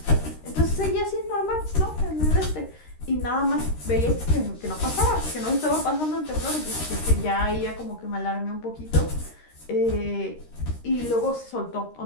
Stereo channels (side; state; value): right; late; 13 ms